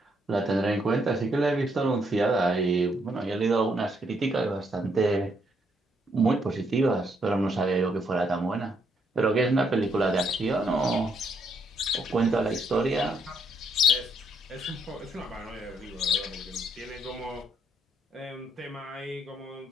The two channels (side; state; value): both; normal; correlation 0.73